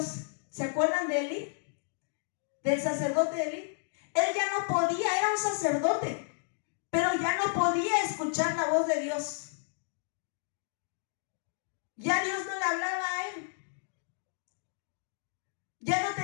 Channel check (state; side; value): silent; right; digital silence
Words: ¿Se acuerdan de Elí? Del sacerdote Elí. Él ya no podía, era un sacerdote, pero ya no podía escuchar la voz de Dios. Ya Dios no le hablaba a él. Ya no